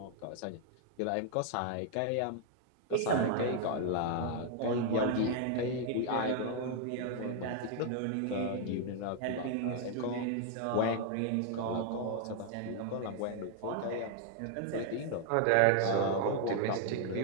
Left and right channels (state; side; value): different; both; correlation 0.00